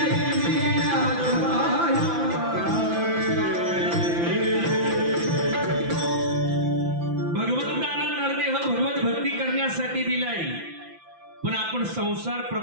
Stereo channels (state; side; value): late; left; 5.9 ms